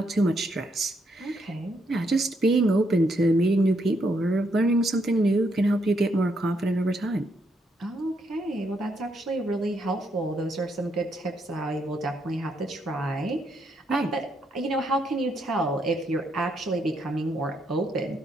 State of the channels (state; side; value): normal; both; correlation 0.76